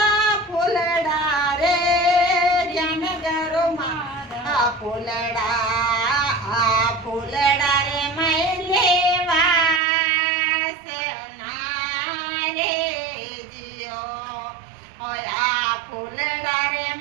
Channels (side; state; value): left; drops out; at 9.8 s